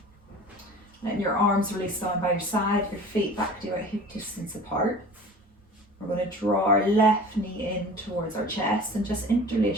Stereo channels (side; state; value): both; normal; correlation 0.40